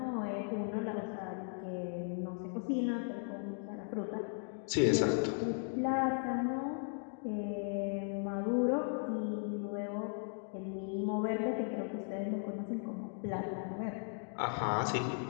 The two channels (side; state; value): right; silent; 53 dB below the other